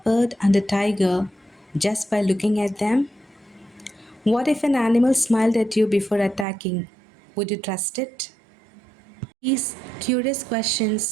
and a tiger just by looking at them? What if an animal smiled at you before attacking? Would you trust it? These curious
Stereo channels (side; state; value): left; drops out; at 6.5 s